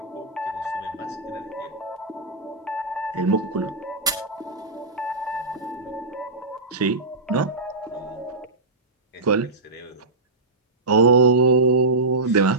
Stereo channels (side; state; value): left; quieter; 3.2 dB